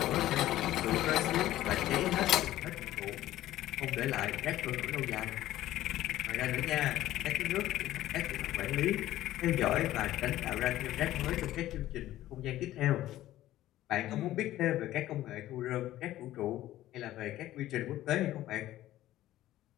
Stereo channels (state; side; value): quieter; right; 14.5 dB